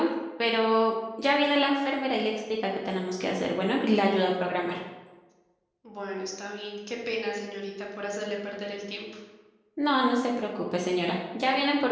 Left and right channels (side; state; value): both; identical; correlation 1.00